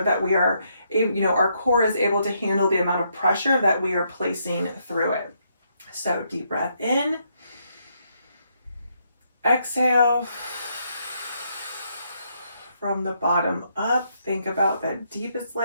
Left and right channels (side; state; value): both; inverted; correlation -0.75